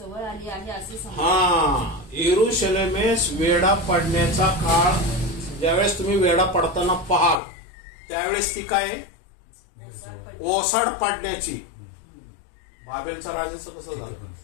आली आहे असे समजा. हा, यरुशलेमेस वेढा पडण्याचा काळ, ज्यावेळेस तुम्ही वेढा पडताना पाहाल त्यावेळेस ती काय ओसाड पडण्याची. बाबेलच्या राजाचं कसं झालं?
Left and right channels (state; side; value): drops out; right; at 7.4 s